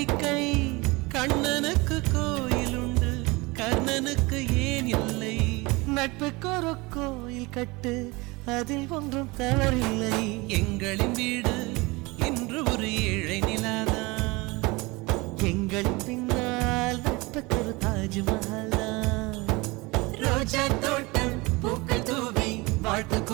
கண்ணனுக்கு கோயில் உண்டு கர்ணனுக்கு ஏன் இல்லை நட்புக்கு ஒரு கோயில் கட்டு அதில் ஒன்றும் தவறில்லை எங்களின் வீடு இன்று ஒரு ஏழை நிலாதான் எங்களின் பின்னால் நட்புக்கு ஒரு தாஜ்மஹால் ரோஜா தோட்டம் பூக்கள் தூவி வாழ்த்து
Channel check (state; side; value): quieter; left; 24.3 dB